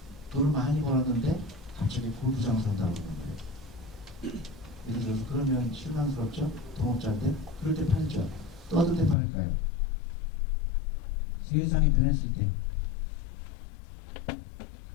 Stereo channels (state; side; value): drops out; right; at 9.2 s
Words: 돈을 많이 벌었는데 갑자기 골프장 산다고 그러는 거예요. 예를 들어서 그러면 실망스럽죠? 동업자인데 그럴 때 팔죠. 또 어떨 때 팔까요? 세상이 변했을 때